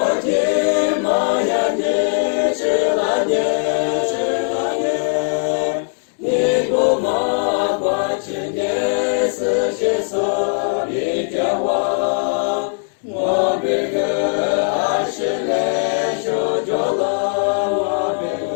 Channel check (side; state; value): right; silent; digital silence